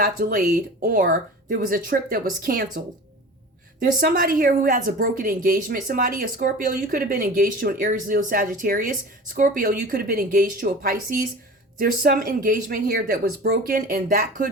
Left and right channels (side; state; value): both; normal; correlation 0.37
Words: delayed, or there was a trip that was canceled. There's somebody here who has a broken engagement. Somebody, a Scorpio, you could have been engaged to an Aries, Leo, Sagittarius. Scorpio, you could have been engaged to a Pisces. There's some engagement here that was broken, and that